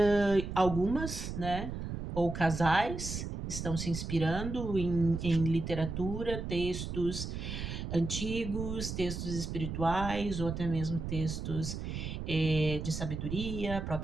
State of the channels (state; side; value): noise; right; rumble, 5 dB below the sound